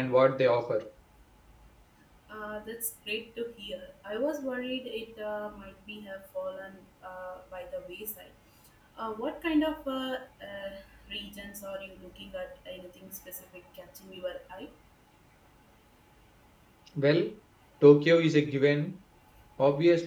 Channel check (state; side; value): identical; both; correlation 1.00